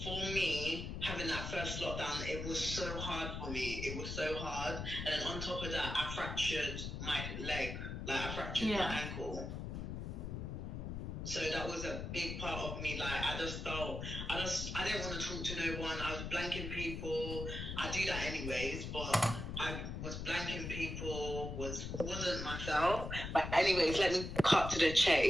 for me, having that first lockdown, it was so hard for me. It was so hard. And then on top of that, I fractured my leg. Like I fractured my ankle. So that was a big part of me. Like I just felt, I didn't want to talk to no one. I was blanking people. I do that anyways, but I was blanking people, wasn't myself. But anyways, let me cut to the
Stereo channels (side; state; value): left; noise; rumble, 5 dB below the sound